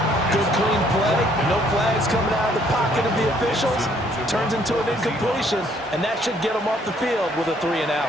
Good clean play. No flags coming out of the pocket of the officials. Turns into an incompletion, and that should get him off the field with a 3 and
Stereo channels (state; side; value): normal; both; correlation 0.65